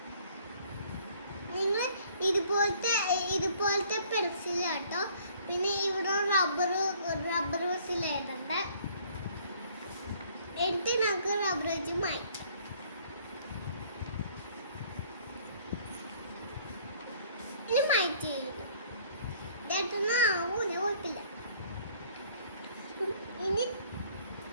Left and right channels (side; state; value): both; inverted; correlation -0.58